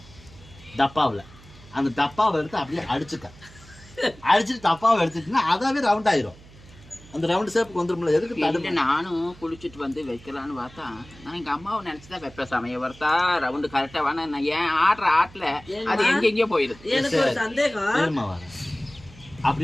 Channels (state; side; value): noise; right; hum, 22 dB below the sound